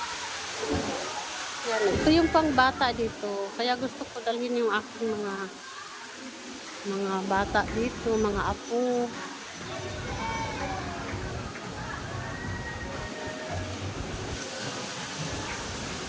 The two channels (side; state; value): both; identical; correlation 1.00